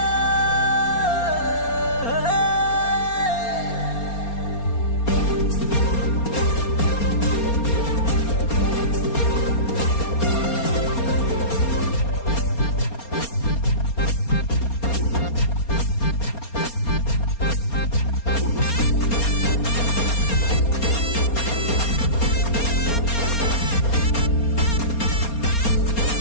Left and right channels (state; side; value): late; right; 4.3 ms